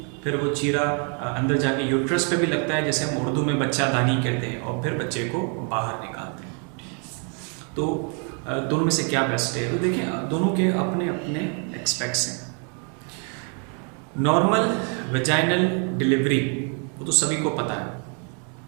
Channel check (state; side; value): quieter; left; 39.4 dB